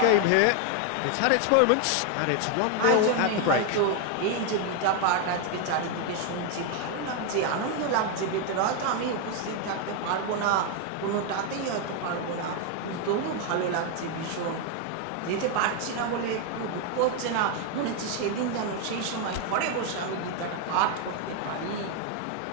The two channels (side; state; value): both; different; correlation 0.01